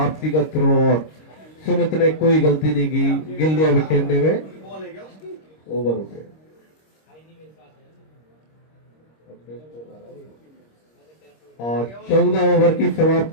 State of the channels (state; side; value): late; right; 26 ms